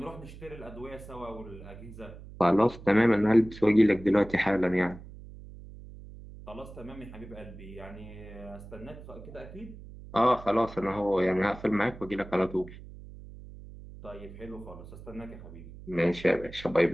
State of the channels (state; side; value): noise; right; hum, 16 dB below the sound